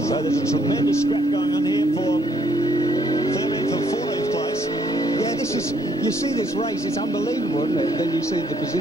So there's a tremendous scrap going on here for 13th and 14th place. Yeah, this is... You see this race, it's unbelievable, isn't it? Then you see the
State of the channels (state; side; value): normal; both; correlation 0.68